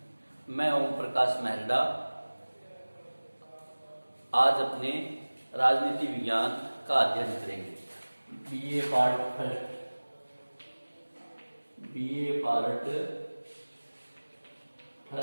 मैं ओम प्रकाश मेहरडा। आज अपने राजनीति विज्ञान का अध्ययन करेंगे। बीए पार्ट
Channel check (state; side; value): inverted; both; correlation -1.00